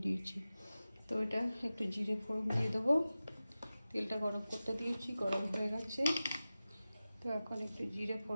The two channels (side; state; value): both; inverted; correlation -0.95